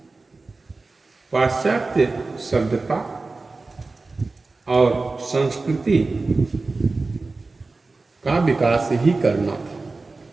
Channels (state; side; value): quieter; left; 3.6 dB